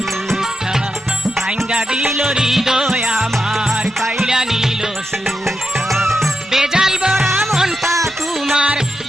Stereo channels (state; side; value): normal; both; correlation 0.86